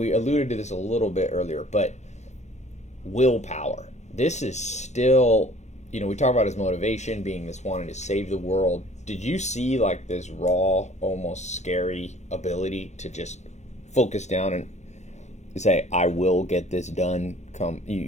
alluded to this a little bit earlier, but willpower. This is still, we talk about his motivation being this wanting to save the world. Did you see like this raw, almost scary ability to just focus down and say, I will get this done?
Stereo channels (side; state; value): right; late; 0.33 ms